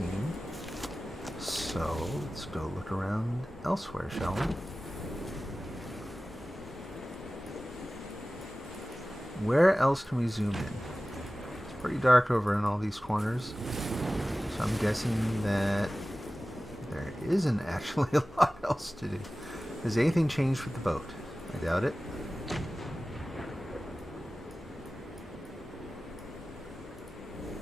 So, let's go look around elsewhere, shall we? Where else can we zoom in? pretty dark over in all these corners. So I'm guessing that there isn't actually a lot else to do. Has anything changed with the boat? I doubt it.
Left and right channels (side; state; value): both; normal; correlation 0.96